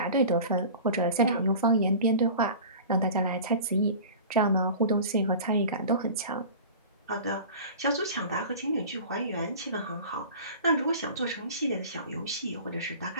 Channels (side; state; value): both; inverted; correlation -0.38